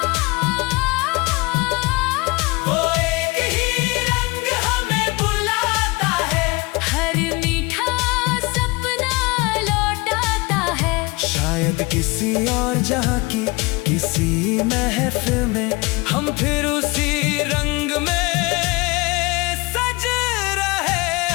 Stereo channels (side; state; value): right; quieter; 25.0 dB